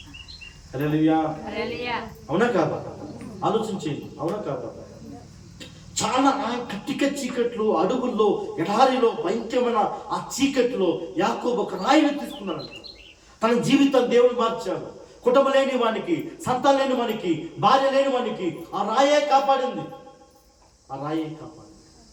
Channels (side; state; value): both; identical; correlation 1.00